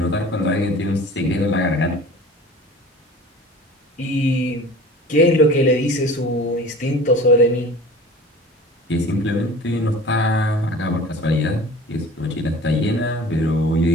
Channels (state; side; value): normal; both; correlation 0.41